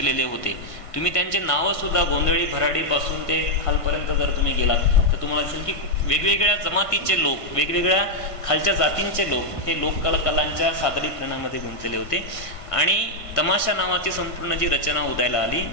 होते. तुम्ही त्यांचे नावं सुद्धा गोंधळी भराडीपासून ते खालपर्यंत जर तुम्ही गेलात तर तुम्हाला दिसेल की वेगवेगळ्या जमातीचे लोक, वेगवेगळ्या खालच्या जातींचे लोक हे लोककलांच्या सादरीकरणामध्ये गुंतलेले होते. आणि तमाशा नावाची संपूर्ण जी रचना उदयाला आली,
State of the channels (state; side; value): late; right; 1.7 ms